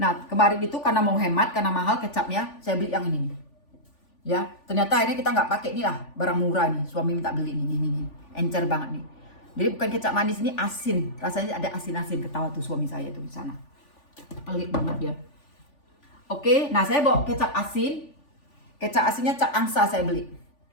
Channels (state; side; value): late; right; 3.5 ms